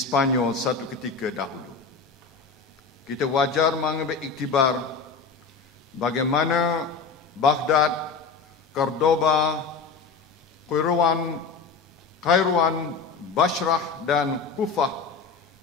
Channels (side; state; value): right; quieter; 5.0 dB